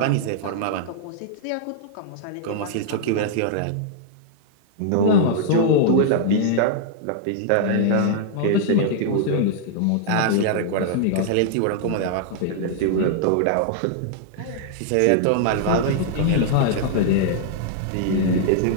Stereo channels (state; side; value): different; both; correlation -0.01